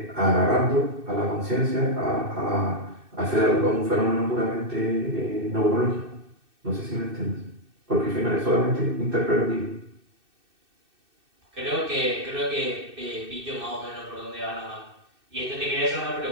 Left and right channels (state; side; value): late; left; 2.6 ms